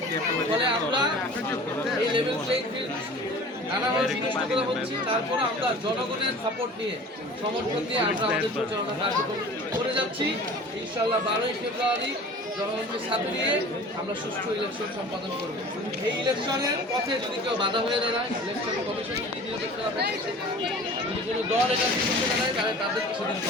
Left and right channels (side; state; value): both; normal; correlation 0.42